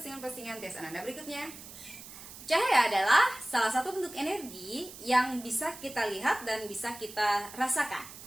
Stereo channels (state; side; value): noise; right; hiss, 15 dB below the sound